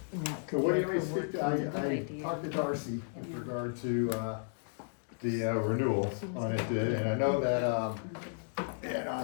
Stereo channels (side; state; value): right; silent; digital silence